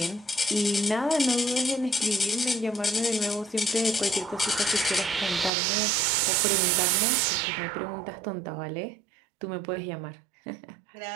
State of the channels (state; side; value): drops out; left; at 5.5 s